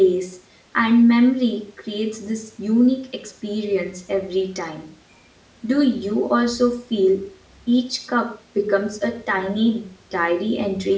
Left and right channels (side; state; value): both; identical; correlation 1.00